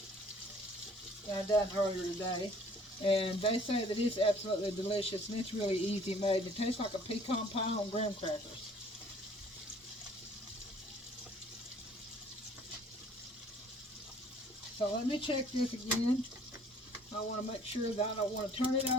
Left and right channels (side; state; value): both; normal; correlation 0.55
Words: I done earlier today. And they say that it's absolutely delicious and it's really easy made. It tastes like a pecan pie on graham crackers. So let me check this again. I want to make sure that I don't want to turn it